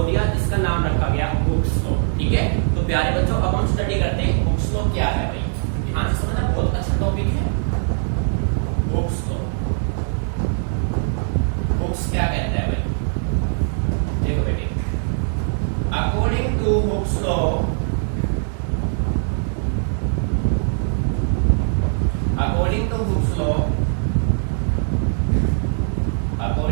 दिया जिसका नाम रखा गया हुक्स लॉ. ठीक है. तो प्यारे बच्चों अब हम स्टडी करते हैं हुक्स लॉ क्या है. भाई ध्यान से समझना, बहुत अच्छा टॉपिक है हुक्स लॉ. हुक्स क्या कहता है भाई, देखो बेटे, अकॉर्डिंग टू हुक्स लॉ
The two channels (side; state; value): left; silent; 60 dB below the other